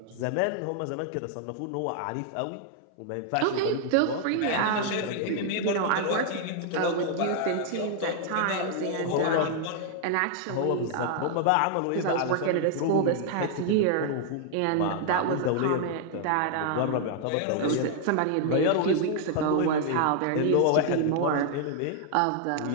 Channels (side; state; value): both; different; correlation 0.00